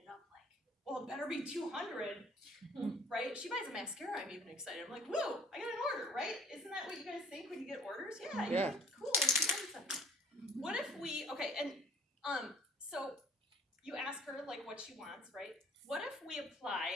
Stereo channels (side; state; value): both; normal; correlation 0.53